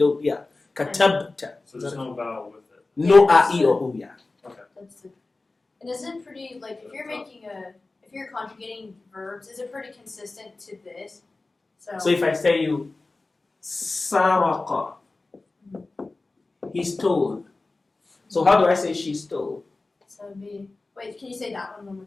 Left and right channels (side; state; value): right; quieter; 3.4 dB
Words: yeah. Katabta. So there's no vowel with it. No a, e, or u, yeah. Okay. And is it pretty, like, if you're conjugating verbs, is it pretty consistent to this? So if I say you, Saraka, he stole. So how do I say she stole? So it'd be, wait, can you say that one more